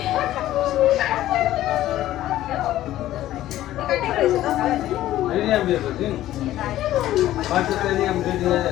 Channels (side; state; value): right; quieter; 14.0 dB